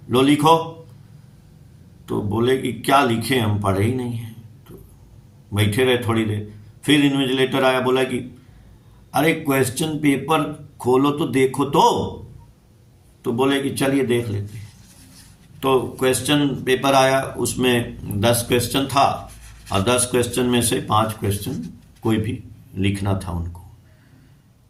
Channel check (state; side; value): identical; both; correlation 1.00